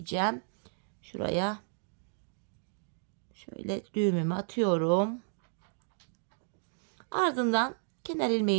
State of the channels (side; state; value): left; silent; digital silence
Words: Şuraya Şöyle düğümümü atıyorum. Ardından kenar